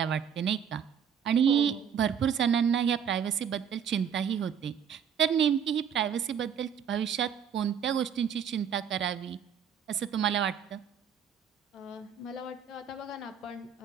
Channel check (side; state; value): left; quieter; 7.9 dB